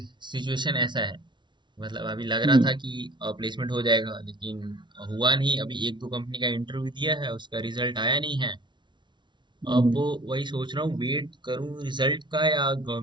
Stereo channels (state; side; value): late; left; 0.23 ms